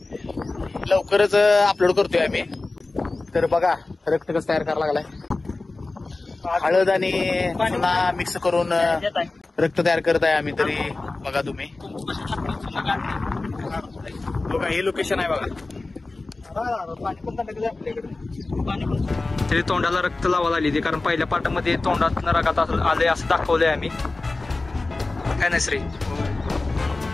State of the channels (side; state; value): right; quieter; 3.3 dB